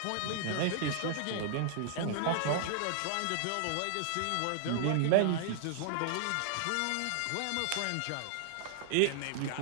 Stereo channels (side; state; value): both; different; correlation 0.00